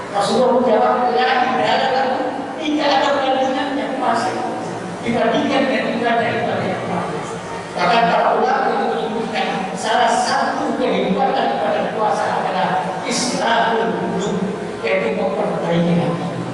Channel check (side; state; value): both; identical; correlation 1.00